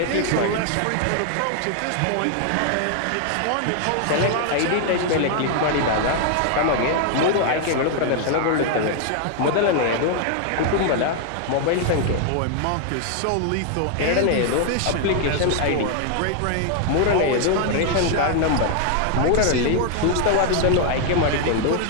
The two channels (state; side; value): different; both; correlation 0.00